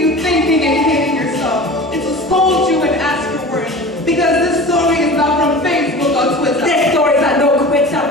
thinking and hating yourself. It will scold you and ask your worth. Because this story is not from Facebook or Twitter. This story is a no quitter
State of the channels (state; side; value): normal; both; correlation 0.36